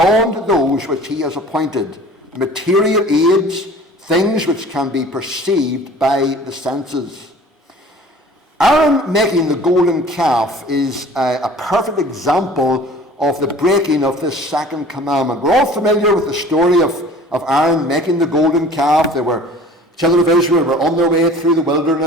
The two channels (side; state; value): both; normal; correlation 0.46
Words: those which he has appointed, material aids, things which can be perceived by the senses. Aaron making the golden calf is a perfect example of the breaking of this second commandment. We're all familiar with the story of Aaron making the golden calf. Children of Israel were on their way through the